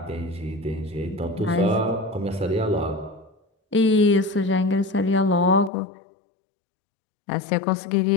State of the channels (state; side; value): drops out; right; at 5.7 s